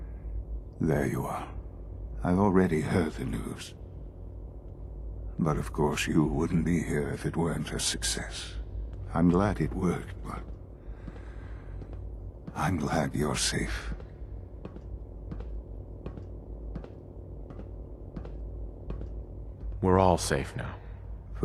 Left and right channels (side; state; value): both; identical; correlation 1.00